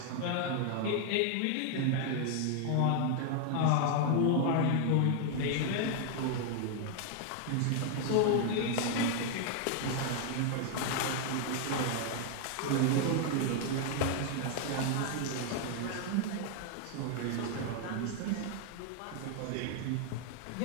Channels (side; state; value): both; different; correlation 0.00